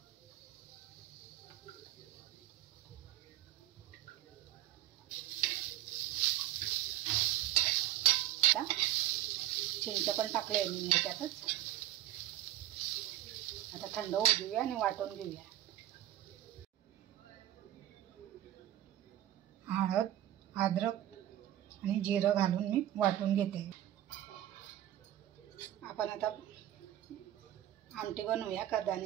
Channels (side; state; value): left; quieter; 13.2 dB